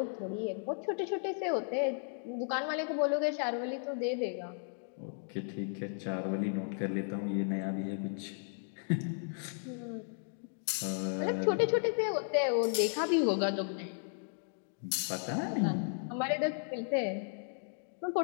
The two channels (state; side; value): silent; right; 55 dB below the other